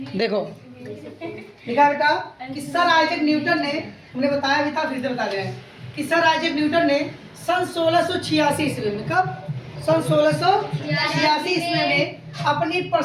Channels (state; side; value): identical; both; correlation 1.00